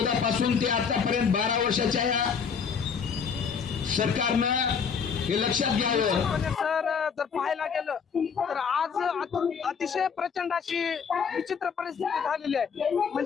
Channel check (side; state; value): right; quieter; 6.3 dB